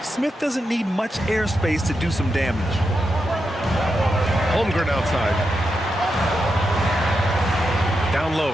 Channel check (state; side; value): normal; both; correlation 0.86